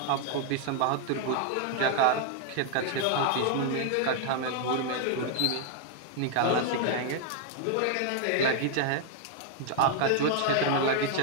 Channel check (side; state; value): both; different; correlation 0.00